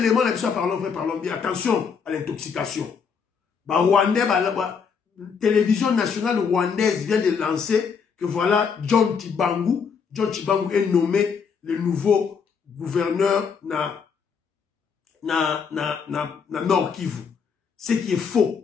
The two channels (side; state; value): right; quieter; 6.1 dB